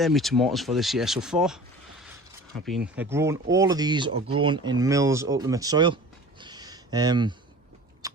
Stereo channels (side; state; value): both; normal; correlation 0.41